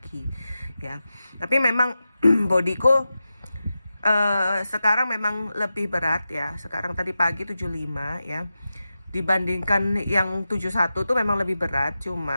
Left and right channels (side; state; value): both; inverted; correlation -0.92